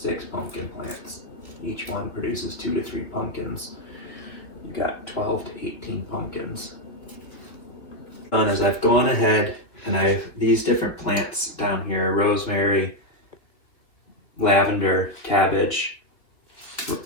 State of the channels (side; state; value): right; late; 2.6 ms